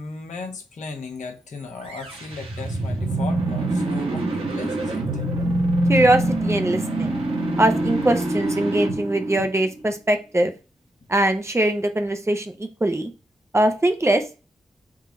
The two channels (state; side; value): normal; both; correlation 0.83